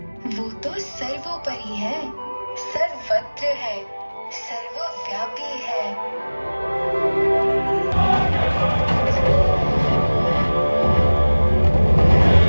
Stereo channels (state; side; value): inverted; both; correlation -1.00